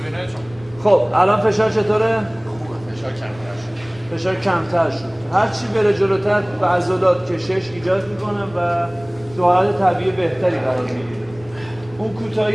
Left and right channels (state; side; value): noise; left; rumble, 22 dB below the sound